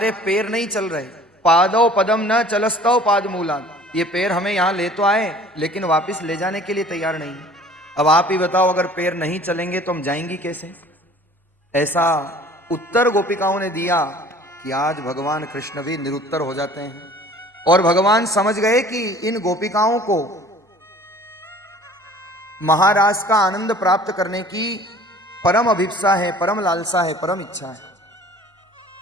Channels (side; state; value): both; normal; correlation 0.49